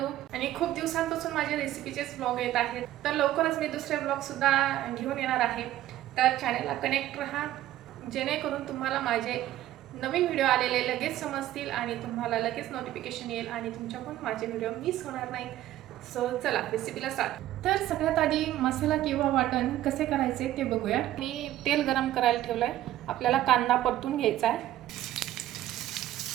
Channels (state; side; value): quieter; left; 13.7 dB